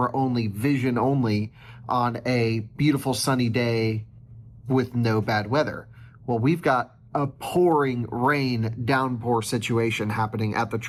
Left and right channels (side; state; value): both; identical; correlation 1.00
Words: only, vision only, on a beautiful sunny day with no bad weather. Well, we've got a pouring rain downpour situation happening at the